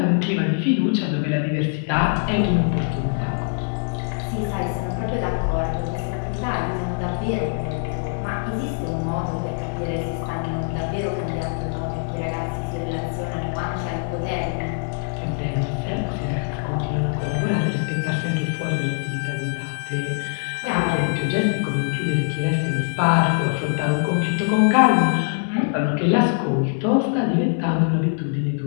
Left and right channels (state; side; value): silent; right; digital silence